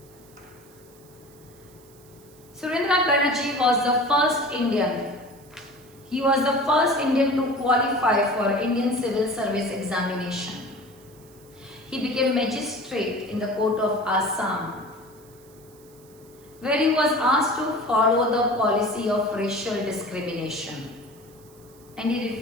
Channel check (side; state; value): right; noise; hiss, 26 dB below the sound